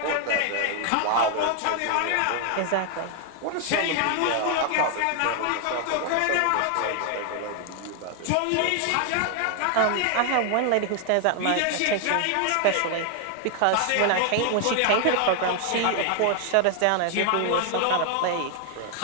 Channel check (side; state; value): both; different; correlation 0.00